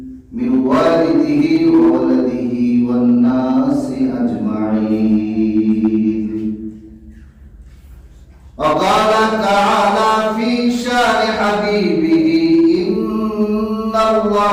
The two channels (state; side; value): identical; both; correlation 1.00